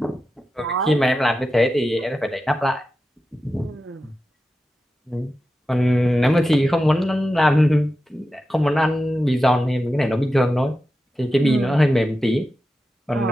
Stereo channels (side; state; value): both; normal; correlation 0.92